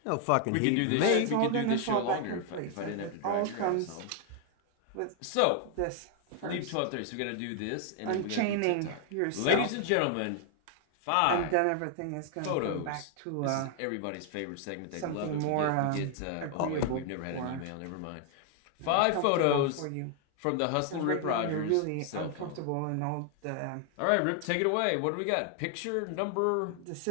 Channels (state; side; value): different; both; correlation 0.00